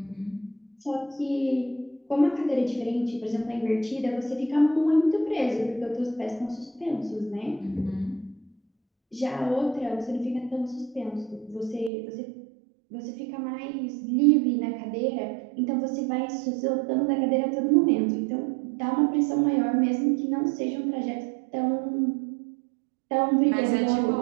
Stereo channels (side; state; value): left; drops out; at 11.9 s